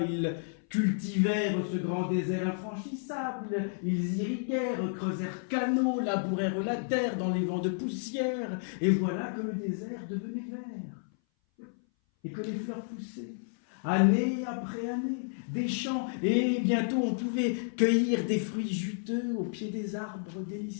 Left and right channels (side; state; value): right; silent; 57 dB below the other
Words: cultivèrent ce grand désert infranchissable, ils irriguèrent, creusèrent canaux, labourèrent la terre dans les vents de poussière, et voilà que le désert devenait vert, et que les fleurs poussaient, année après année, des champs, et bientôt on pouvait cueillir des fruits juteux au pied des arbres